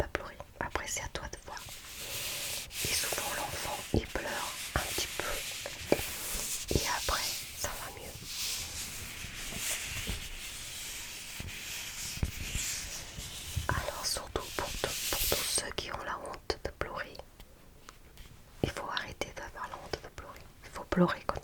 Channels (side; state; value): both; identical; correlation 1.00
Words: pleurer. Après, c'est à toi de voir. Et souvent, l'enfant, il pleure un petit peu. Et après, ça va mieux. Alors, surtout pour tous ceux qui ont la honte de pleurer, il faut arrêter d'avoir la honte de pleurer. Il faut pleurer quand